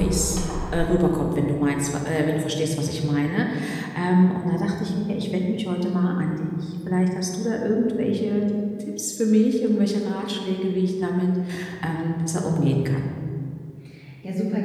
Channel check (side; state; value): both; identical; correlation 1.00